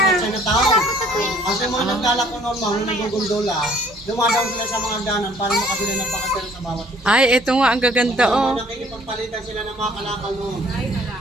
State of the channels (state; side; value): normal; both; correlation 0.58